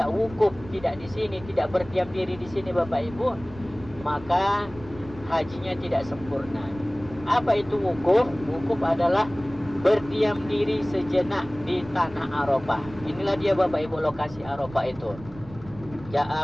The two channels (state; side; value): noise; right; rumble, 17 dB below the sound